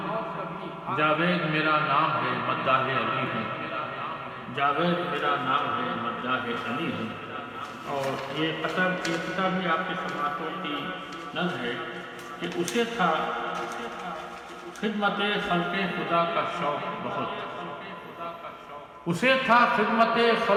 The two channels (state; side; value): identical; both; correlation 1.00